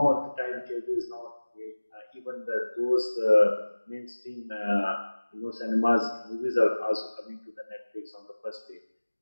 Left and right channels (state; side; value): inverted; both; correlation -1.00